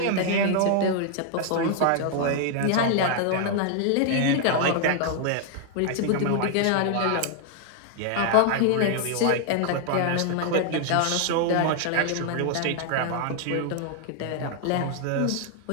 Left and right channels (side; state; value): both; different; correlation 0.00